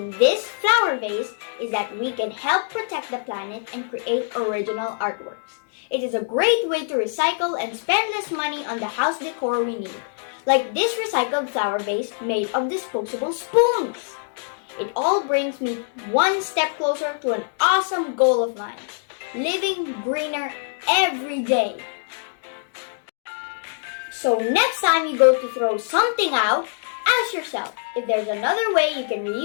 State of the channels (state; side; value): silent; right; digital silence